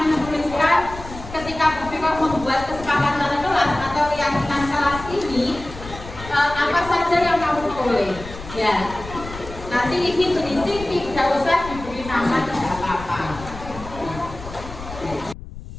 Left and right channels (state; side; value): noise; left; rumble, 13 dB below the sound